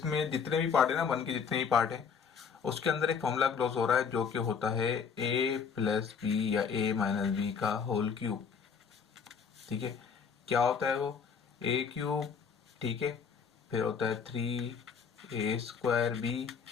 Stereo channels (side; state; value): right; quieter; 6.3 dB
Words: जितने भी पार्ट है ना, 1 के जितने भी पार्ट है उसके अंदर एक फॉर्मूला क्लोज हो रहा है जो कि होता है a प्लस बी या a माइनस बी का होल क्यूब। ठीक है, क्या होता है वो, a क्यूब, ठीक है, फिर होता है 3a square b